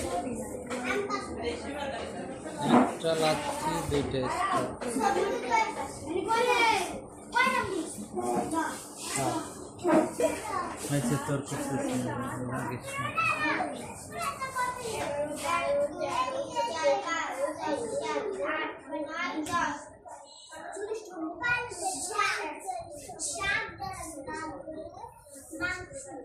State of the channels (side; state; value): both; identical; correlation 1.00